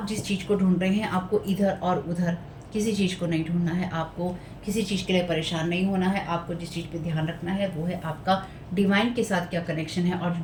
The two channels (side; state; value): both; identical; correlation 1.00